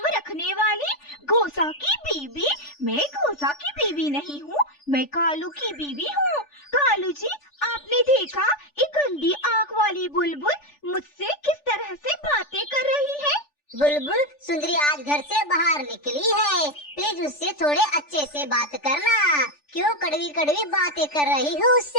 रखने वाली? गोसा की बीबी? मैं गोसा की बीबी नहीं हूँ, मैं कालू की बीबी हूँ। कालू जी, आपने देखा एक गंदी आँख वाली बुलबुल मुझसे किस तरह से बातें कर रही है? बुलबुल, सुंदरी आज घर से बाहर निकली है, प्लीज उससे थोड़े अच्छे से बात करना। क्यों कड़वी कड़वी बातें कर रही हो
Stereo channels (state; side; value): late; right; 3.4 ms